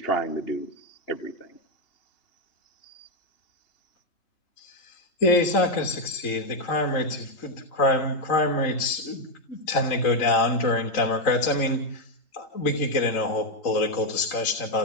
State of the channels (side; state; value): right; late; 3.8 ms